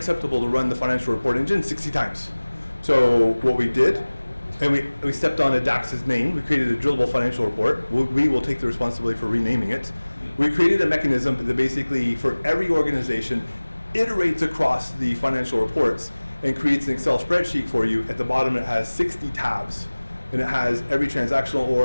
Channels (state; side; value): inverted; both; correlation -1.00